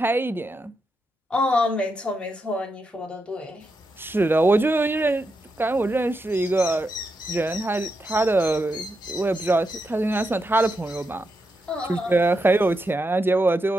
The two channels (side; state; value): both; normal; correlation 0.85